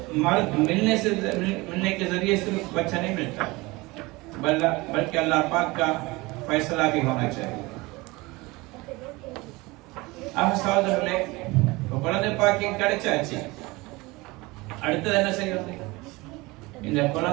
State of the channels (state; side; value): quieter; left; 22.8 dB